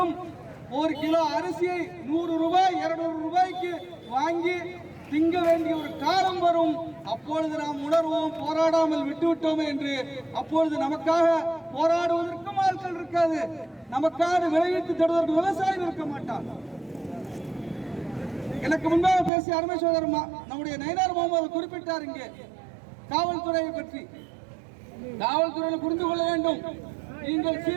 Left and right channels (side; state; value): left; drops out; at 19.3 s